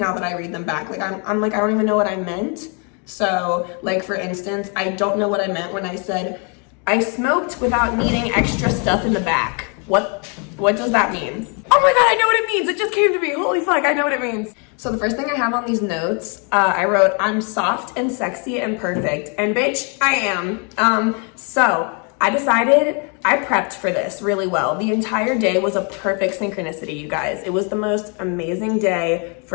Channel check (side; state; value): right; quieter; 36.6 dB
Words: that I read them back. Like I'm like, I don't even know what I meant. So like, for instance, I don't know what I meant when I said, I smoked without needing extra stuff in the back. What does that mean? Oh my God, I know what it means. It just came to me. Holy fuck, I know what it means. So the first thing I have on these notes, I wrote, I'm soft and sexy and perfect. And bitch, I am. So I decided, I prepped for this really well. The entire day was a perfect synchronicity, you guys. It was the most amazing day